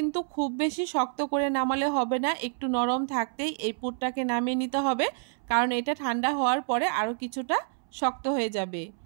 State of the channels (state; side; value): silent; left; 59 dB below the other